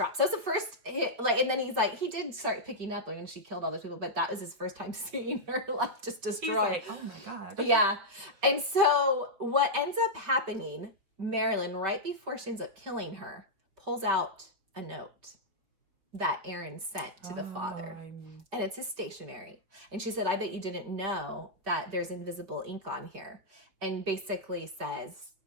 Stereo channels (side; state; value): left; late; 5.6 ms